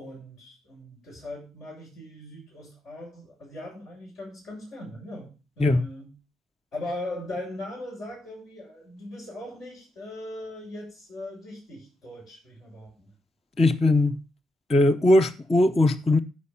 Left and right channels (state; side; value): normal; both; correlation 0.84